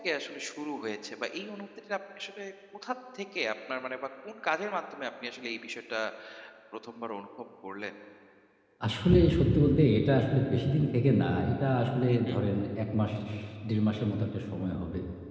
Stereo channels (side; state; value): both; identical; correlation 1.00